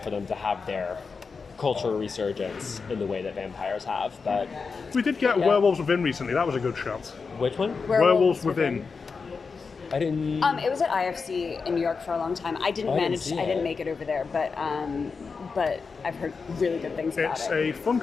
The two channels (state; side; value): quieter; right; 4.9 dB